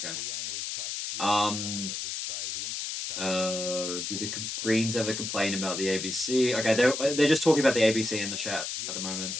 Did the Greens ever complain about the ABC? Okay, they're just talking about the ABC in the chat at the moment.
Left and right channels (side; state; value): left; noise; hiss, 4 dB below the sound